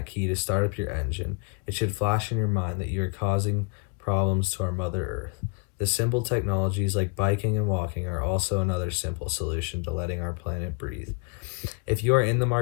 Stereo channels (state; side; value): quieter; right; 32.6 dB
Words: key to start up your engine, it should flash in your mind that you are causing problems to our Mother Earth. The simple technologies like biking and walking are also another simple solution to letting our planet breathe. If you are in the